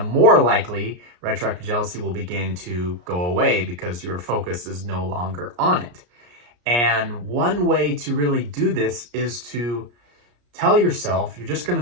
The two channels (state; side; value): late; left; 34 ms